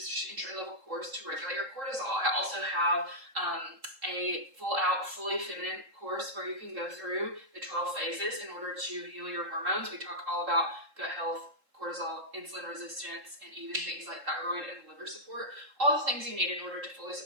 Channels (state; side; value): late; left; 3.7 ms